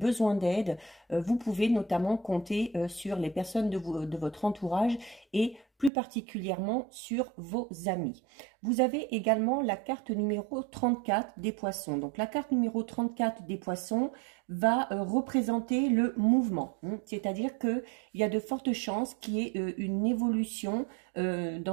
d'aide, vous pouvez notamment compter sur les personnes de votre entourage et plus particulièrement sur vos amis. Vous avez également la carte numéro 34 des poissons. Donc la carte numéro 34 des poissons va représenter le mouvement. C'est-à-dire qu'il y a de fortes chances qu'il y ait une évolution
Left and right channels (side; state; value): left; drops out; at 5.9 s